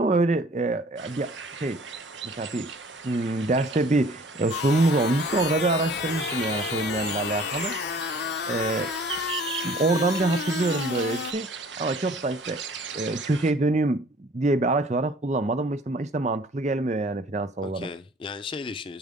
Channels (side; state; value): both; normal; correlation 0.51